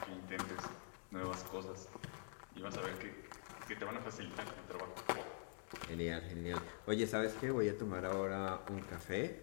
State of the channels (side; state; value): right; silent; digital silence